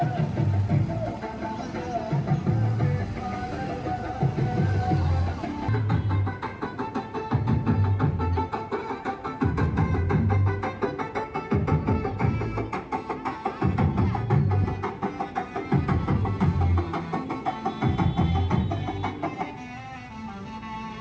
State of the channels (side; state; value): both; identical; correlation 1.00